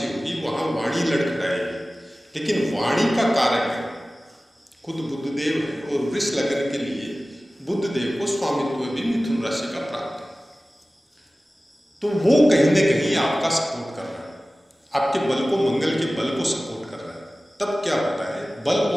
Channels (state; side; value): normal; both; correlation 0.97